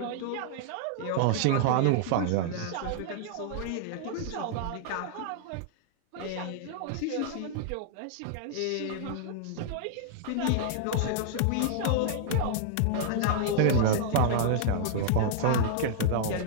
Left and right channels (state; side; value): different; both; correlation -0.01